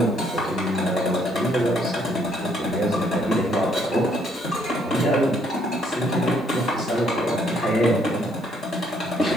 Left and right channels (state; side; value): normal; both; correlation 0.68